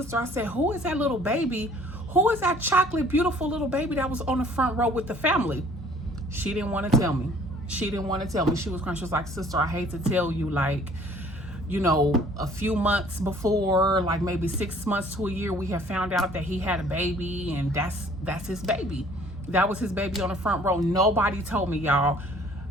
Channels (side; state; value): both; normal; correlation 0.55